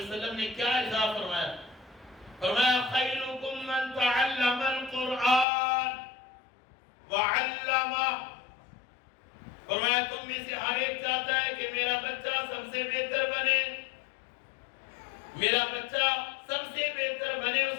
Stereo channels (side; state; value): right; drops out; at 5.5 s